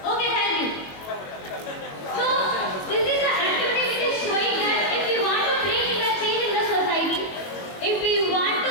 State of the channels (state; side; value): late; right; 22 ms